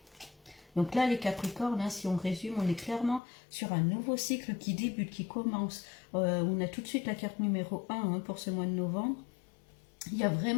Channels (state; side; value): drops out; right; at 3.2 s